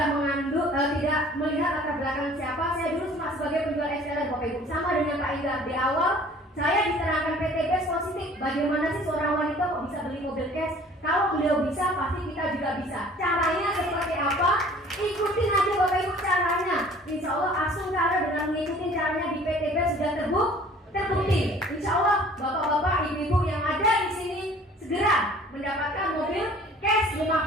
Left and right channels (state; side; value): normal; both; correlation 0.51